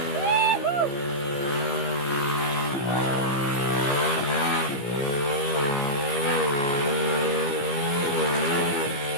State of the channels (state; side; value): late; right; 15 ms